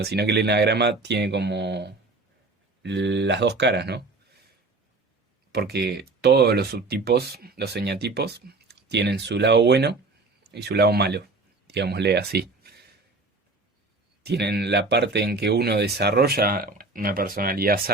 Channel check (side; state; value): left; quieter; 3.5 dB